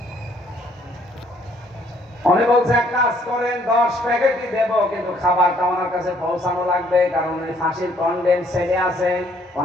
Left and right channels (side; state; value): both; normal; correlation 0.65